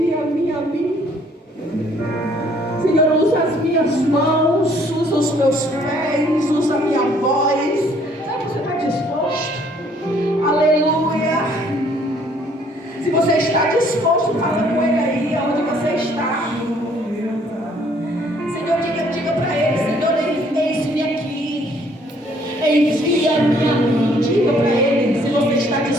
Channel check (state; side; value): normal; both; correlation 0.62